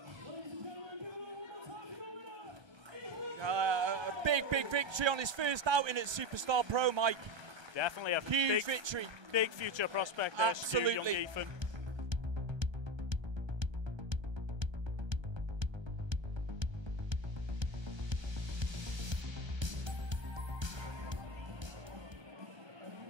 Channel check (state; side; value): late; left; 1.3 ms